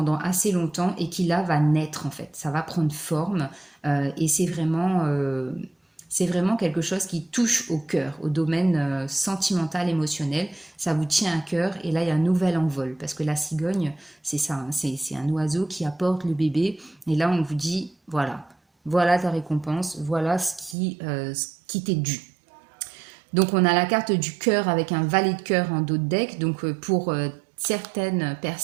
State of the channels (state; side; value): drops out; left; at 20.8 s